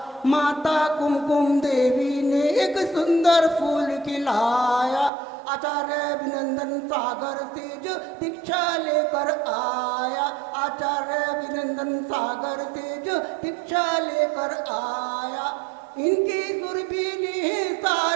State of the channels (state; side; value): drops out; left; at 5.1 s